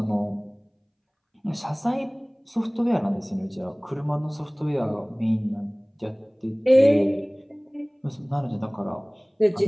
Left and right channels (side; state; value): both; identical; correlation 1.00